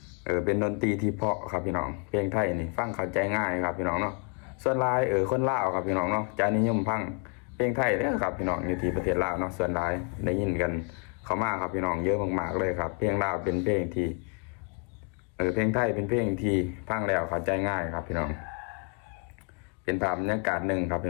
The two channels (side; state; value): right; quieter; 36.2 dB